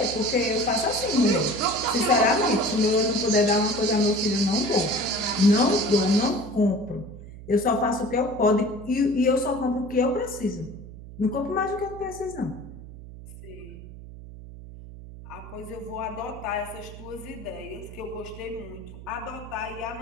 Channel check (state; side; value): noise; right; hum, 15 dB below the sound